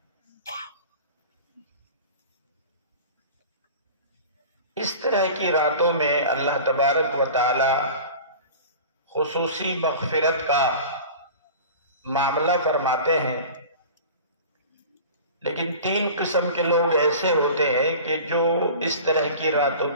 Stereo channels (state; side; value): inverted; both; correlation -0.38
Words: اس طرح کی راتوں میں اللہ تبارک و تعالی خصوصی مغفرت کا معاملہ فرماتے ہیں، لیکن 3 قسم کے لوگ ایسے ہوتے ہیں کہ جو اس طرح کی راتوں